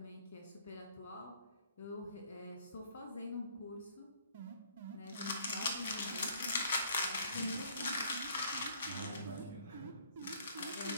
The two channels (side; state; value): both; inverted; correlation -0.59